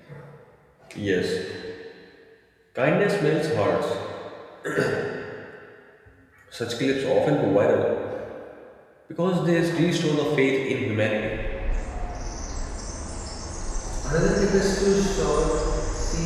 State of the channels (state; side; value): identical; both; correlation 1.00